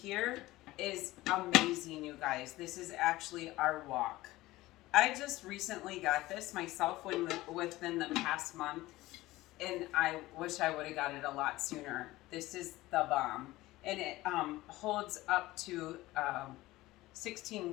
is amazing, you guys. This is actually our wok. I just recently got this myself within the past month, and I wish I would have got it a lot sooner. This is the bomb, and it holds up to 16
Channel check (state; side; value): quieter; right; 18.1 dB